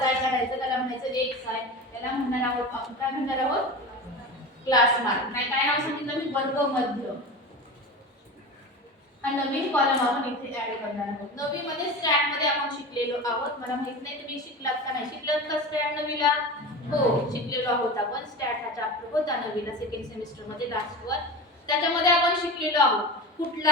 i काढायचं त्याला म्हणायचं xi त्याला म्हणणार आहोत आपण काय म्हणणार आहोत क्लास मार्क नाही काय नाव सांगितलं मी वर्गमध्य हा नवीन कॉलम आपण इथे ऍड करणार आहोत नवी मध्ये स्टॅट मध्ये आपण शिकलेलो आहोत मला माहित नाही तुम्ही शिकलात का नाही शिकलात का स्टॅट नवीला हो शिकलेलो आहोत आपण स्टॅट हा चॅप्टर होता नवीला सेकंड सेमिस्टर मध्ये लास्ट वर त्याच्यामध्ये आपण शिकलेलो आहोत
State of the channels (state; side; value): normal; both; correlation 0.29